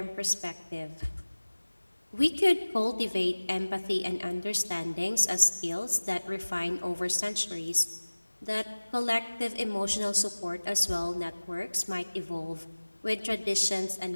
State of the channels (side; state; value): both; inverted; correlation -1.00